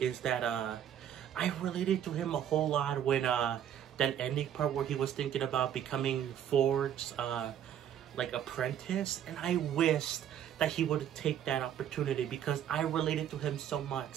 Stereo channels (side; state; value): left; quieter; 9.9 dB